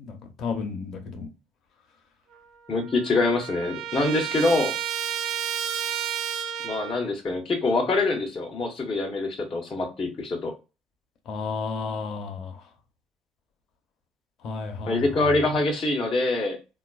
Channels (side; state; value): both; normal; correlation 0.66